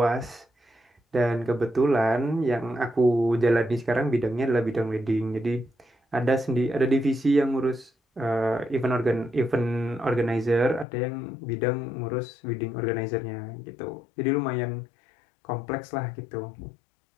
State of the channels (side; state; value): right; drops out; at 10.9 s